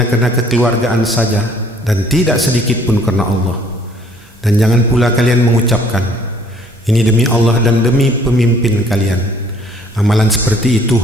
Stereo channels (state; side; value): normal; both; correlation 0.59